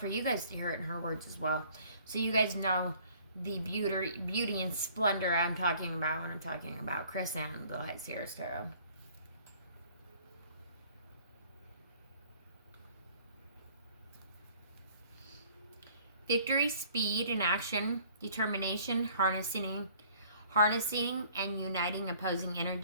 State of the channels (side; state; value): both; inverted; correlation -0.56